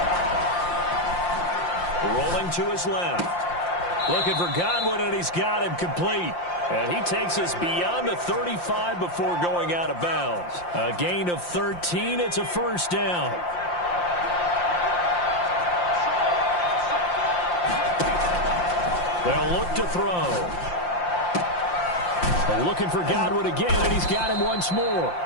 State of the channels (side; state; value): right; late; 5.7 ms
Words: Rolling to his left. Looking for Godwin, and he's got him complete. And he takes us beyond the 35 before going out of bounds. A gain of 13. It's a first down. They'll look to throw. Looking for Godwin again, and he's got him once more.